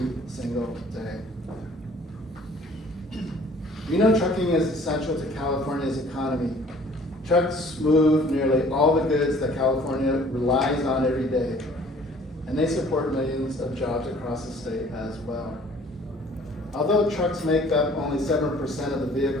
single day. We know trucking is essential to California's economy. Trucks move nearly all the goods that California relies on every day, and they support millions of jobs across the state as well. Although trucks make up only 7% of the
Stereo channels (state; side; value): normal; both; correlation 0.54